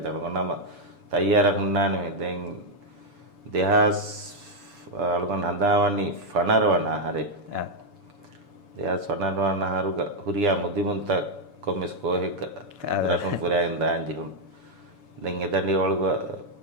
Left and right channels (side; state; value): left; late; 7.0 ms